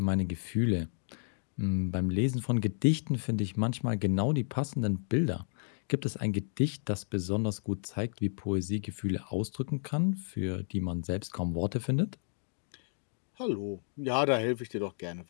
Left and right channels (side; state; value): right; silent; digital silence